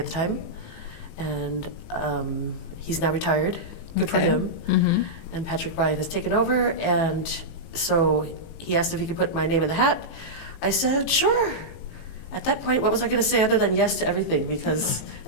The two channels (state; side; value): late; right; 18 ms